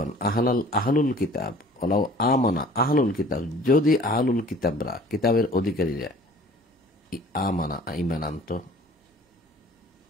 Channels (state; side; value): normal; both; correlation 0.50